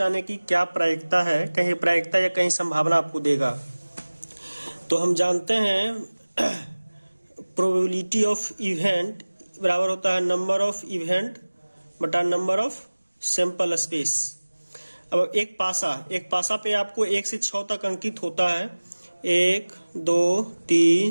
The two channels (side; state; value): both; inverted; correlation -1.00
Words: आने की क्या प्रायिकता है। कहीं प्रायिकता या कहीं संभावना आपको देगा। तो हम जानते हैं प्रोबेबिलिटी ऑफ इवेंट बराबर होता है नंबर ऑफ इवेंट बटा नंबर ऑफ सैंपल स्पेस। अब एक पासा पे आपको 1 से 6 तक अंकित होता है। 1 2